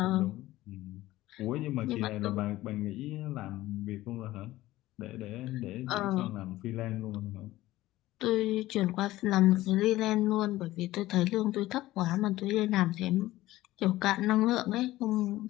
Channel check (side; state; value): right; quieter; 16.5 dB